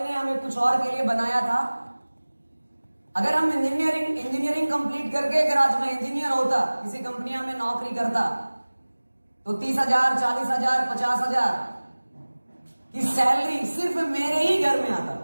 हमें कुछ और के लिए बनाया था। अगर हम इंजीनियरिंग कंप्लीट करके अगर आज मैं इंजीनियर होता, किसी कंपनियां में नौकरी करता, तो 30,000, 40,000, 50,000 की सैलरी सिर्फ मेरे ही घर में आता।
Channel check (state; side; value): inverted; both; correlation -1.00